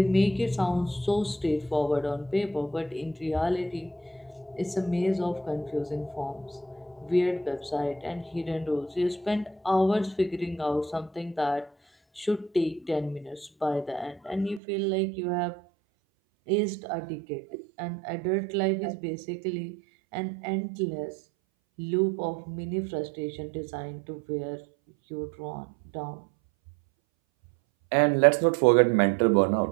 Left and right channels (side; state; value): left; drops out; at 14.6 s